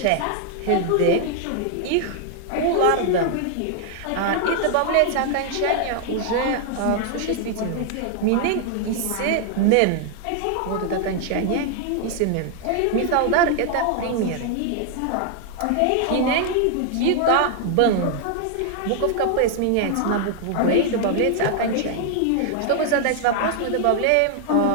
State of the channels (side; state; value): both; different; correlation 0.00